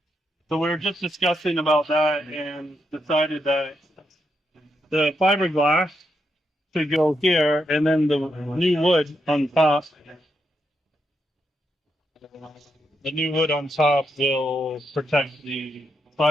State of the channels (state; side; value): normal; both; correlation 0.82